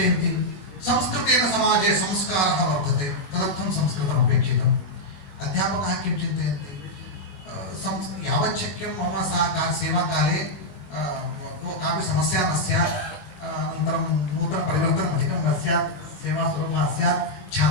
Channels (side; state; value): right; late; 21 ms